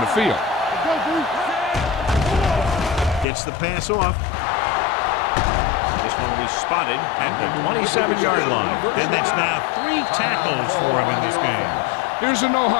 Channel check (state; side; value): drops out; right; at 3.2 s